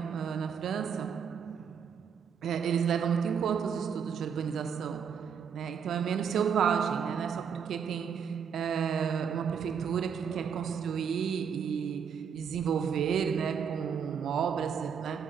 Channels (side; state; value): left; quieter; 7.1 dB